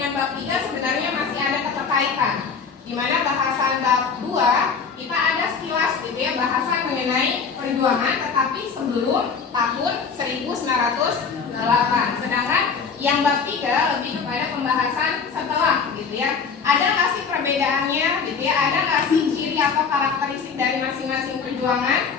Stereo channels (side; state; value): right; quieter; 5.7 dB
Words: bab 3 sebenarnya masih ada keterkaitan. Di mana bahasan bab 2 kita ada sekilas gitu ya, bahasan mengenai perjuangan tetapi sebelum tahun 1908. Sedangkan yang bab 3 lebih kepada pembahasan setelah gitu ya. Ada nggak sih perbedaannya gitu ya? Ada nggak sih ciri atau karakteristik dari masing-masing perjuangan?